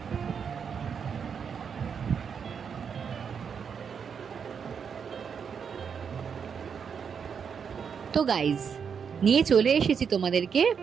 তো গাইজ, নিয়ে চলে এসেছি তোমাদেরকে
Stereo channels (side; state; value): left; quieter; 6.7 dB